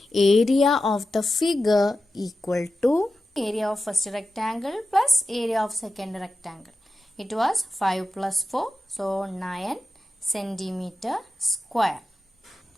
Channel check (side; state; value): both; normal; correlation 0.91